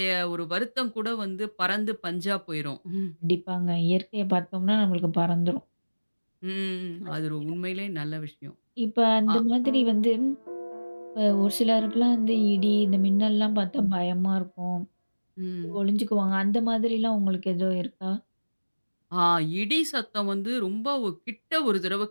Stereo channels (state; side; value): inverted; both; correlation -1.00